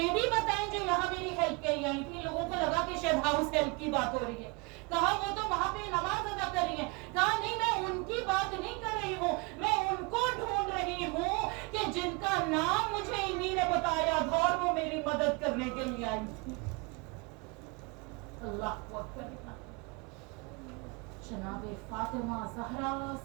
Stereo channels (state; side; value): quieter; left; 28.3 dB